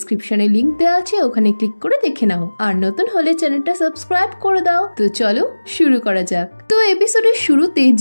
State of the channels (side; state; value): both; inverted; correlation -1.00